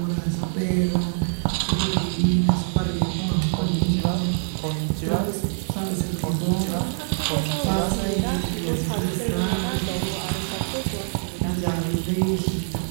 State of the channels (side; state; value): left; silent; digital silence